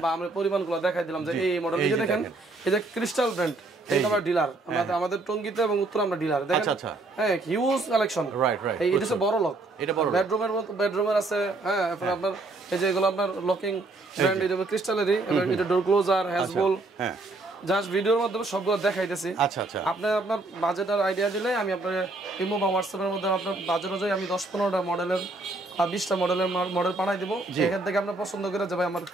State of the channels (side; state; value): left; quieter; 3.1 dB